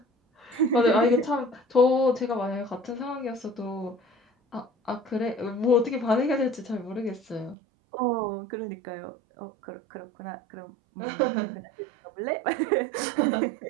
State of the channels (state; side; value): drops out; left; at 7.6 s